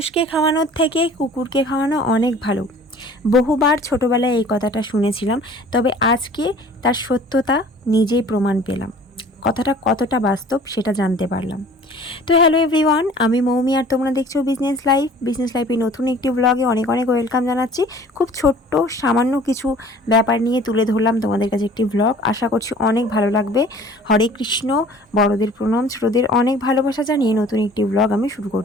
খাওয়ানোর থেকে কুকুরকে খাওয়ানো অনেক ভালো। বহুবার ছোটোবেলায় এই কথাটা শুনেছিলাম, তবে আজকে তার সত্যতা নিজেই প্রমাণ পেলাম। কথাটা কতটা বাস্তব সেটা জানতে পারলাম। তো হ্যালো এভরিওয়ান, আমি মৌমি আর তোমরা দেখছো বিজনেস লাইফের নতুন একটি ব্লগে অনেক অনেক ওয়েলকাম জানাচ্ছি। খুব ছোট্ট সামান্য কিছু ব্যাপার নিয়ে তুলে ধরলাম তোমাদের কাছে একটি ব্লগ। আশা করছি অনেক ভালো লাগবে। হরে কৃষ্ণ, বড়দের প্রণাম, ছোটদের অনেক ভালোবাসা জানিয়ে নতুন একটি ব্লগ আমি শুরু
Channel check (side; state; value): both; normal; correlation 0.49